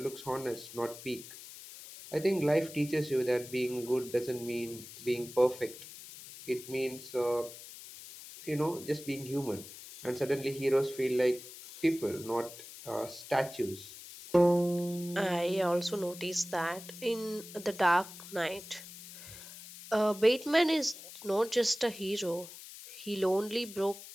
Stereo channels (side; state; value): left; noise; hiss, 15 dB below the sound